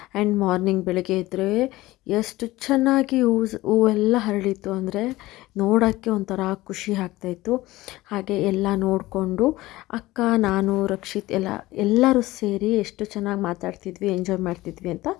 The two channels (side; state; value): right; quieter; 18.2 dB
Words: ಆ್ಯಂಡ್ ಮಾರ್ನಿಂಗ್ ಬೆಳಗ್ಗೆ ಇದ್ದರೆ ಎಷ್ಟು ಚೆನ್ನಾಗಿ ಹೂವೆಲ್ಲ ಹರಳಿತ್ತು ಅಂದರೆ ನೋಡೋಕ್ಕೆ ಒಂಥರ ಖುಷಿ ಆಗ್ತಾಯಿತ್ತು. ಹಾಗೆ ಎಲ್ಲ ನೋಡಿಕೊಂಡು ಅಕ್ಕ, ನಾನು, ರಕ್ಷಿತ್ ಎಲ್ಲರೂ ಸೇರಿ ಎಷ್ಟು ಚೆನ್ನಾಗಿ ಮಾತಾಡ್ತಿದ್ವಿ, ಎಂಜಾಯ್ ಮಾಡ್ತಿದ್ವಿ ಅಂತ